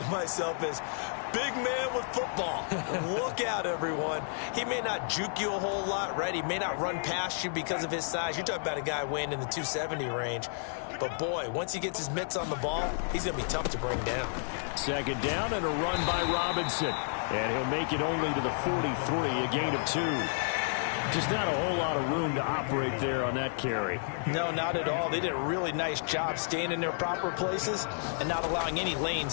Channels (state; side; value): silent; right; 57 dB below the other